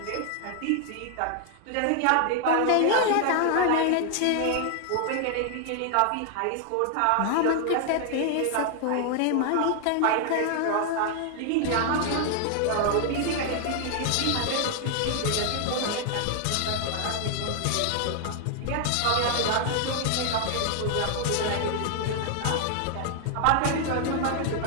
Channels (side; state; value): both; different; correlation 0.00